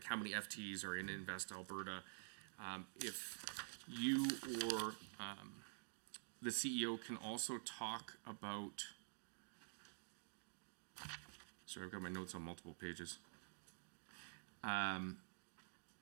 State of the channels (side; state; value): left; silent; digital silence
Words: how many FTEs are in Invest Alberta. If you or the CEO can also talk about, sorry, I've got my notes on multiple pages. Again,